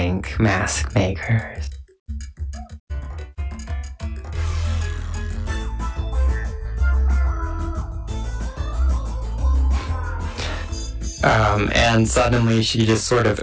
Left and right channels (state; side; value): identical; both; correlation 1.00